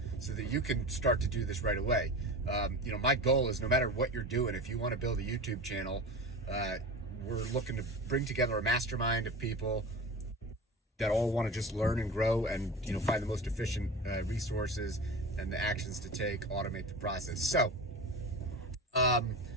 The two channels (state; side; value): normal; both; correlation 0.30